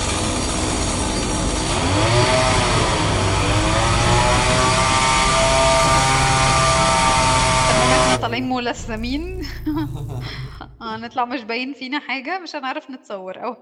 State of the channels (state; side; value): identical; both; correlation 1.00